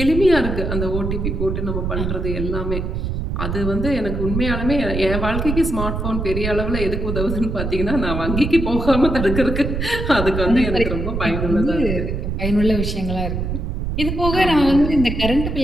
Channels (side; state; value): right; noise; rumble, 3 dB below the sound